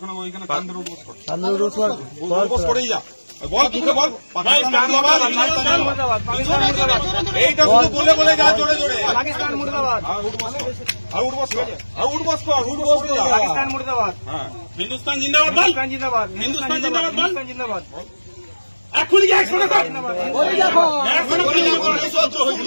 এইটা শুধু বলে বলে যা জোরে জোরে। পাকিস্তান মুর্দাবাদ, পাকিস্তান মুর্দাবাদ, হিন্দুস্তান জিন্দাবাদ, হিন্দুস্তান জিন্দাবাদ, হিন্দুস্তান জিন্দাবাদ, হিন্দুস্তান জিন্দাবাদ। এখনই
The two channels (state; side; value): inverted; both; correlation -1.00